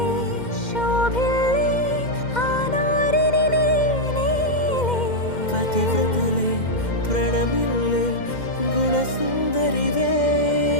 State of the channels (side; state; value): right; late; 2.1 ms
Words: శోభిల్లే ఆనారిని నేనేలే పతివ్రతలే ప్రణమిల్లే గుణసుందరివే